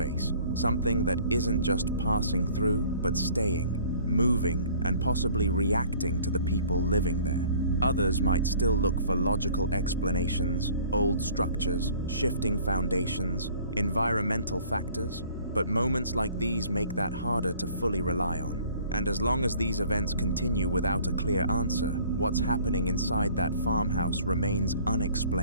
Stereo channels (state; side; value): inverted; both; correlation -0.53